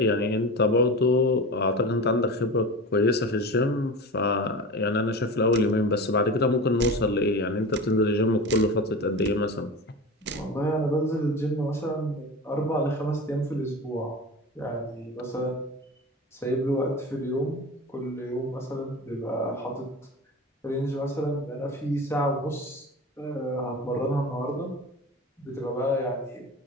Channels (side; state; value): both; normal; correlation 0.30